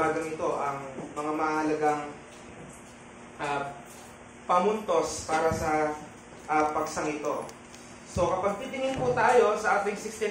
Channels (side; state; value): both; identical; correlation 1.00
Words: ito ang mga mahalagang pamuntos para sa paksang ito. So kapag titingin po tayo sa ating